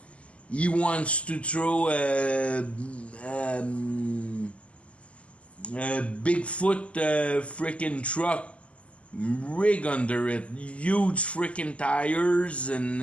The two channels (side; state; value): right; late; 0.061 ms